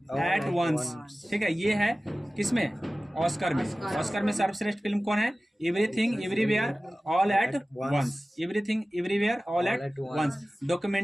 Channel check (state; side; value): normal; both; correlation 0.97